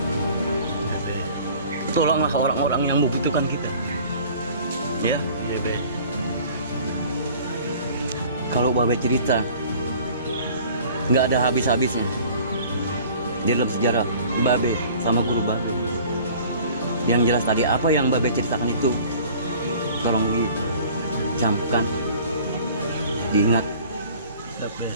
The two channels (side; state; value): both; inverted; correlation -0.48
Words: Tolonglah orang-orang yang membutuhkan kita. Ya. Iya Be. Kalau Babe cerita, nggak ada habis-habisnya. Di dalam sejarah Babe sama guru Babe. Yang jelas tadi apa yang Babe ceritakan itu, tolong dicamkan, diingat. Siap Be.